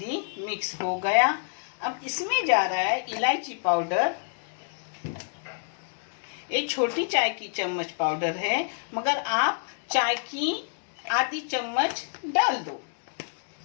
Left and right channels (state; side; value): silent; right; digital silence